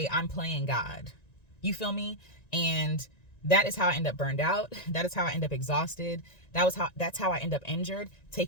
I'm playing God. You feel me? And that is how I end up burned out. That is how I end up exhausted. That's how I end up injured,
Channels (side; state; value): right; late; 1.9 ms